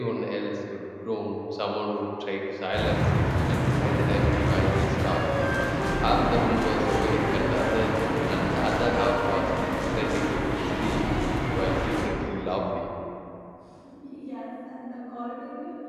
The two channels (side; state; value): both; identical; correlation 1.00